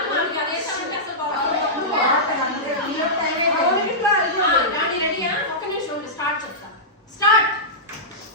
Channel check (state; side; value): normal; both; correlation -0.14